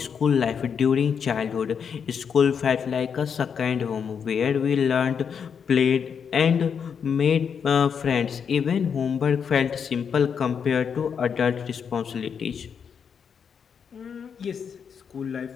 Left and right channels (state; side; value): quieter; right; 6.9 dB